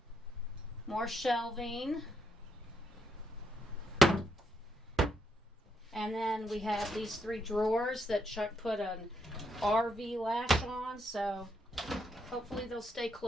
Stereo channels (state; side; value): normal; both; correlation 0.78